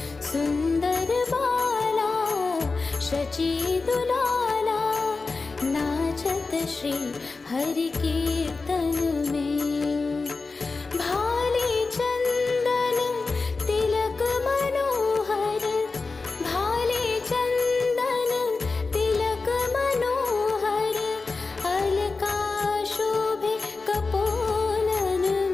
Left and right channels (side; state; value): right; quieter; 4.0 dB